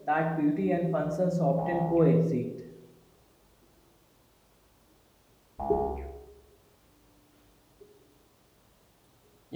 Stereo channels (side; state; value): both; identical; correlation 1.00